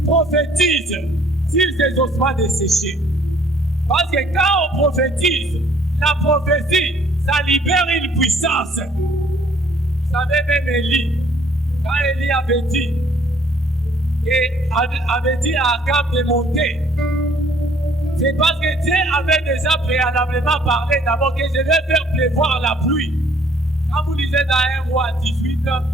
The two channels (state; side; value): normal; both; correlation 0.60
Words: Prophétise sur ces ossements desséchés. Parce que quand on prophétise, la prophétie, ça libère une puissance. Vous savez, même Élie, quand Élie avait dit à Akab de monter, c'est parce que Dieu avait déjà préalablement parlé d'abord que je vais faire pleuvoir la pluie. Quand vous lisez dans 1 roi 18,